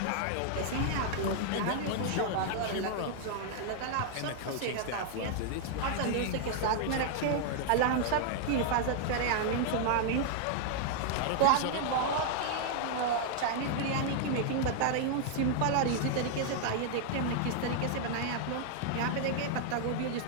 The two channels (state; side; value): different; both; correlation -0.01